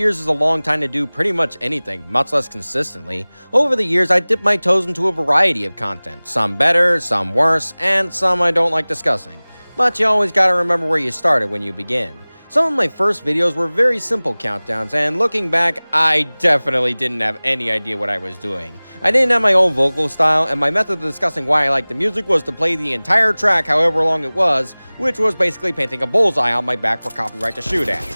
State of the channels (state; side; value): inverted; both; correlation -1.00